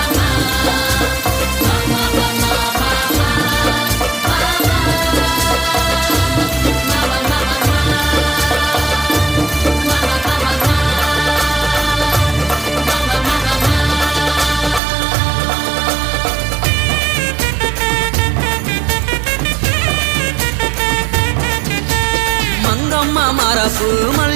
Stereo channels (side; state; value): left; drops out; at 14.8 s